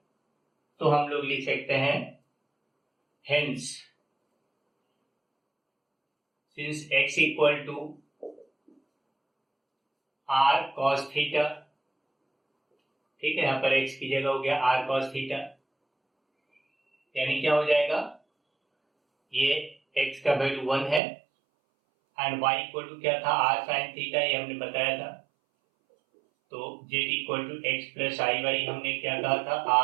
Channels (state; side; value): drops out; left; at 21.0 s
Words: तो हम लोग लिख सकते हैं hence since x equal to r cos theta, ठीक है, यहां पर x की जगह हो गया आर कॉस थीटा, यानी क्या हो जाएगा, ये x का वैल्यू 1 है एंड y इक्वल टू क्या था, आर साइन थीटा, ये हमने बताया था, तो z equal to x plus i y हमने क्या कहा था,